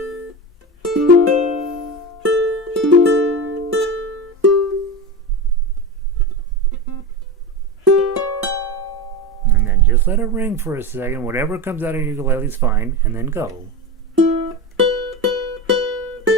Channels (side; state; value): both; normal; correlation 0.23